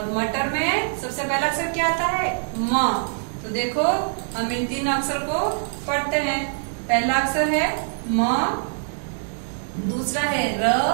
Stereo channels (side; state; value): left; silent; digital silence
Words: मटर में सबसे पहला अक्षर क्या आता है, म। तो देखो हम इन 3 अक्षर को पढ़ते हैं। पहला अक्षर है म, दूसरा है र